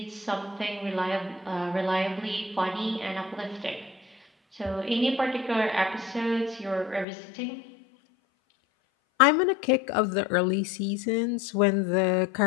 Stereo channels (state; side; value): drops out; right; at 7.1 s